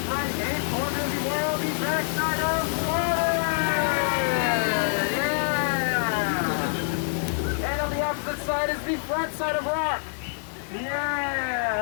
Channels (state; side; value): silent; right; digital silence